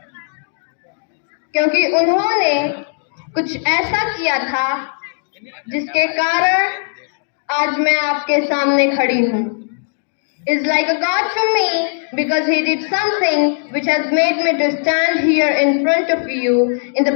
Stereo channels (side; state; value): right; silent; digital silence